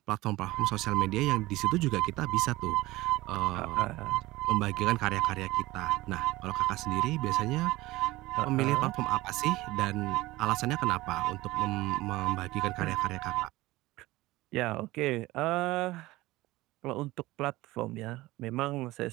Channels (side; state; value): left; quieter; 18.9 dB